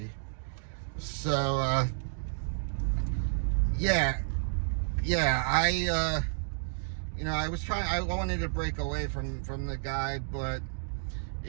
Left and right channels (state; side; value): silent; left; digital silence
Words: So I wanted to break away from the guy, but